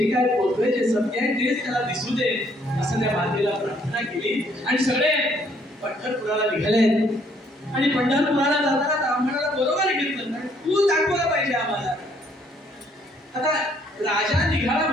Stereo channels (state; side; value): normal; both; correlation 0.66